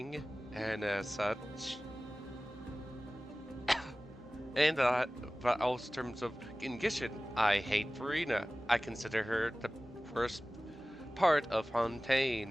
and as such. And but also in terms of Gishin, I hate Farina. I consider her the worst part of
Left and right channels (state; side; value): normal; both; correlation 0.97